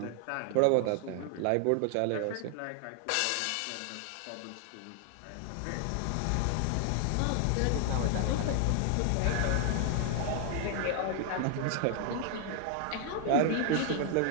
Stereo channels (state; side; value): different; both; correlation 0.00